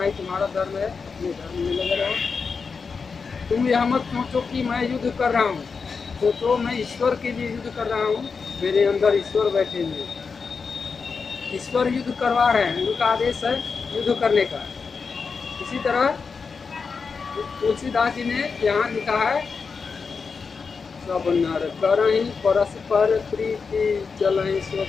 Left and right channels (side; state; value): right; quieter; 5.2 dB